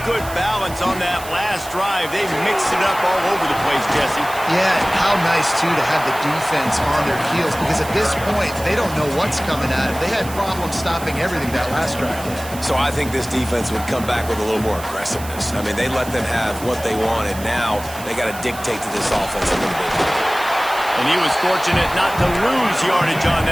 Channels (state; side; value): noise; right; hiss, 14 dB below the sound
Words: good balance on that last drive. They mixed it up all over the place, Jesse. Yeah, and how nice, too, to have the defense on their heels, because at this point, they don't know what's coming at them. They had problems stopping everything that last drive. So I think this defense would come back with a little more aggressiveness. I mean, they let them have what they wanted. Now they got to dictate to this offense a little bit. And he was fortunate not to lose yardage on